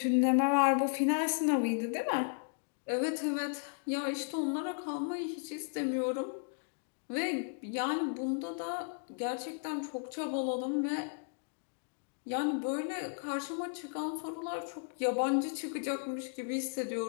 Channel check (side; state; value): right; silent; digital silence